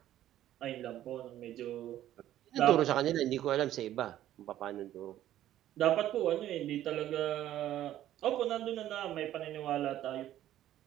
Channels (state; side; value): quieter; left; 12.7 dB